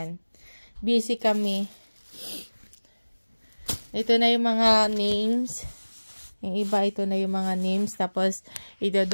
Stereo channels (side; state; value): both; inverted; correlation -1.00